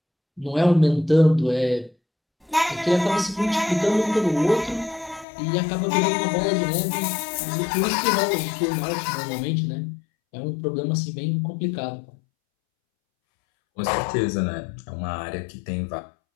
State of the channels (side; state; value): right; drops out; at 5.2 s